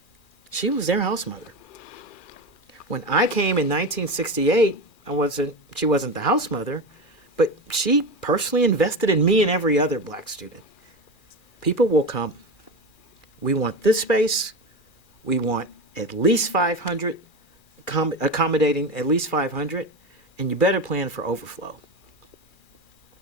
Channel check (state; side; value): late; right; 2.4 ms